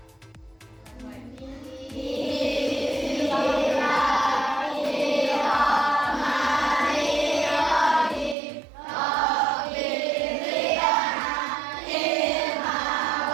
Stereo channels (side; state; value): left; drops out; at 8.3 s